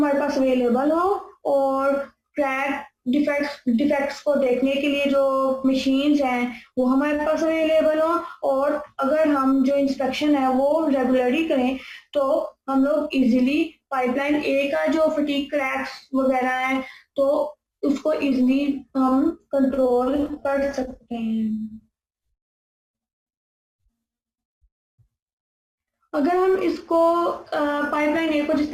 पास अवेलेबल हो और क्रैक डिफेक्ट्स को देखने के लिए जो मशीन्स हैं वो हमारे पास अवेलेबल हो, और अगर हम जो इंस्पेक्शन है वो रेगुलरली करें तो हम लोग इजीली पाइपलाइन ए का जो फटीग क्रैक्स वगैरह हैं तो उसको इजीली हम कंट्रोल कर सकते हैं. अगर हम इसको पाइपलाइन ए को जिस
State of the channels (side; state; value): both; identical; correlation 1.00